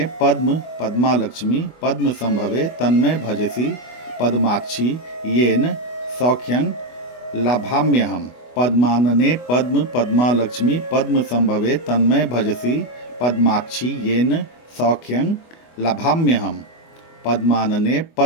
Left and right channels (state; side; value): late; right; 24 ms